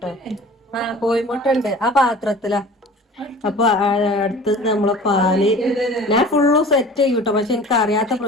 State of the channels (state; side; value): normal; both; correlation 0.43